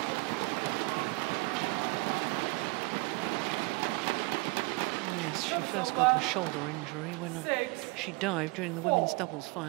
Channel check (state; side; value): quieter; left; 25.9 dB